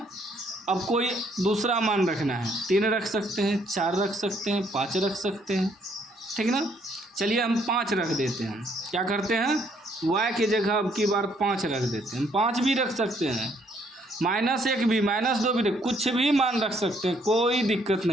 अब कोई दूसरा मान रखना है। 3 रख सकते हैं, 4 रख सकते हैं, 5 रख सकते हैं, ठीक ना। चलिए हम 5 रख देते हैं। क्या करते हैं, y की जगह अब की बार 5 रख देते हैं। 5 भी रख सकते हैं, -1 भी, -2 भी, कुछ भी मान रख सकते हैं, कोई दिक्कत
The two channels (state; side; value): normal; both; correlation 0.68